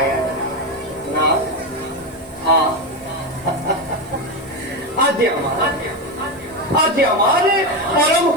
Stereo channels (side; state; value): right; noise; hiss, 27 dB below the sound